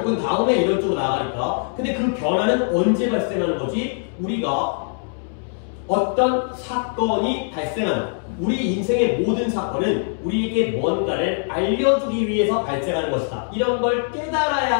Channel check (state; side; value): silent; right; 64 dB below the other